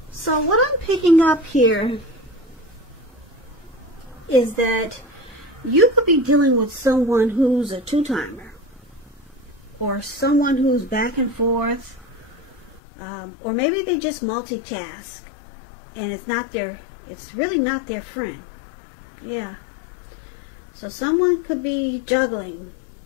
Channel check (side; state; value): right; drops out; at 12.8 s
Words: So what I'm picking up here is that you could be dealing with someone who's a two-timer, or someone who's back and forth, or maybe they just multitask and it's really not their friend. Yeah. So someone could be juggling